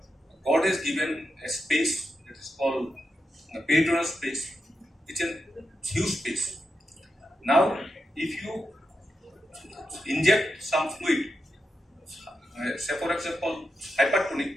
God has given a space that is called peritoneal space. It's a huge space. Now, if you inject some fluid, say for example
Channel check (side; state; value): both; normal; correlation 0.87